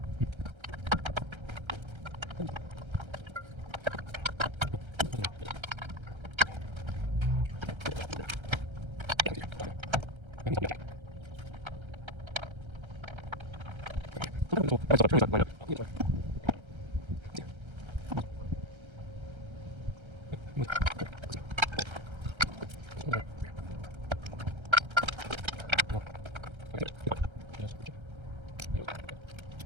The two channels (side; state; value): left; late; 1.3 ms